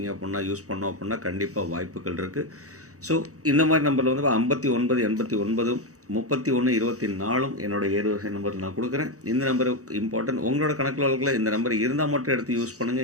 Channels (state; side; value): late; left; 0.65 ms